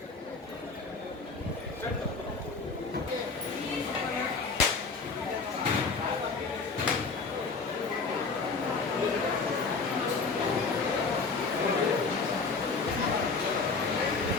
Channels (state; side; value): quieter; right; 4.4 dB